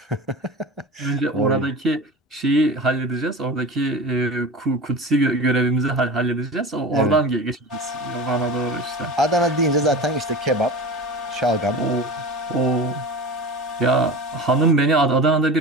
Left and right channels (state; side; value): normal; both; correlation 0.31